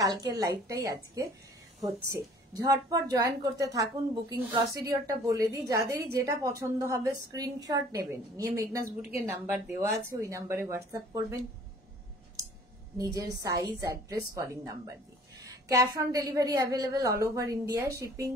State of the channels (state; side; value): normal; both; correlation 0.52